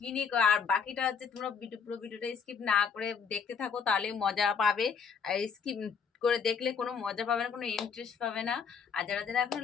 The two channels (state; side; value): quieter; right; 6.1 dB